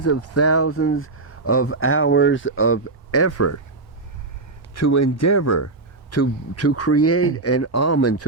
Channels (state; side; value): quieter; left; 3.4 dB